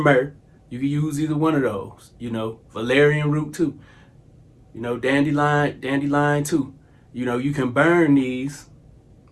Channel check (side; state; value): both; identical; correlation 1.00